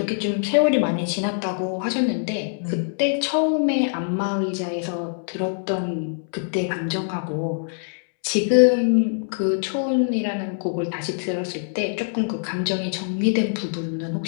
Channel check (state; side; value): silent; right; 63 dB below the other